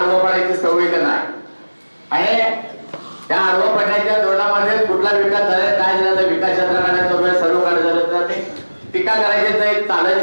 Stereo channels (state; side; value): inverted; both; correlation -1.00